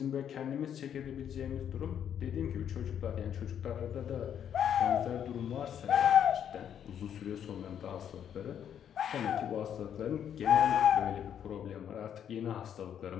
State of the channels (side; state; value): right; quieter; 9.1 dB